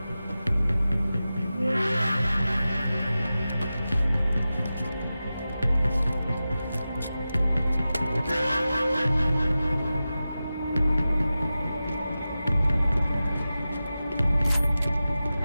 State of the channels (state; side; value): inverted; both; correlation -0.94